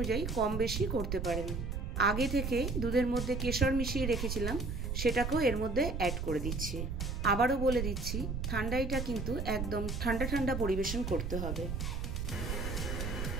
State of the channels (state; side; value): noise; right; rumble, 3 dB below the sound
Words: কম বেশি করতে পারেন। আগে থেকে দুধের মধ্যে কেশর মিশিয়ে রেখেছিলাম, সেটাকেও এর মধ্যে অ্যাড করে দিচ্ছি। আবারও বলে দিচ্ছি, ঠান্ডাইটা কিন্তু একদম ঠান্ডা ঠান্ডা পরিবেশন করতে হবে।